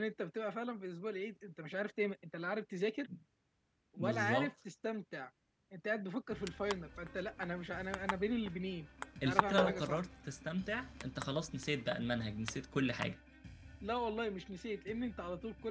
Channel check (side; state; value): both; identical; correlation 1.00